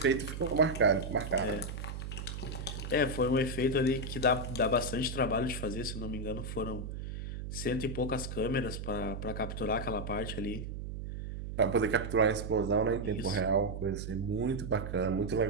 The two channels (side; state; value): right; noise; hum, 6 dB below the sound